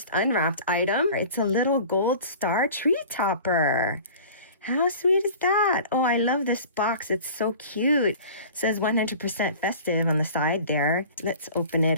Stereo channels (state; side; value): inverted; both; correlation -0.42